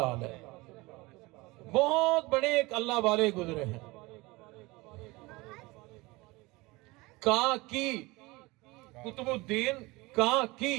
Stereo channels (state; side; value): quieter; left; 22.7 dB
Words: علیہ۔ بہت بڑے ایک اللہ والے گزرے ہیں۔ کاکی، قطب الدین کاکی،